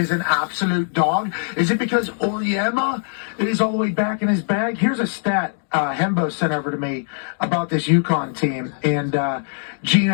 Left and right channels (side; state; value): right; silent; 58 dB below the other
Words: an absolute dog? Is it because Oriema is all the way back in his bag? Here's a stat Hembo sent over to me about this UConn team and